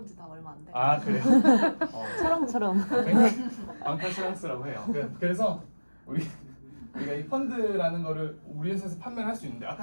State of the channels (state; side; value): inverted; both; correlation -1.00